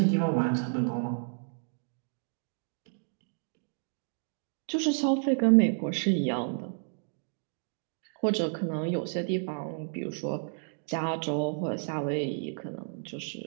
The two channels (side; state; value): left; silent; digital silence